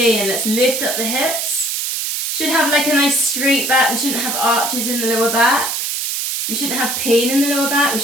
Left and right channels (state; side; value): noise; right; hiss, 2 dB below the sound